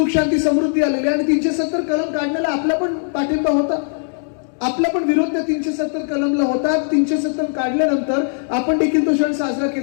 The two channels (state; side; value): silent; right; 66 dB below the other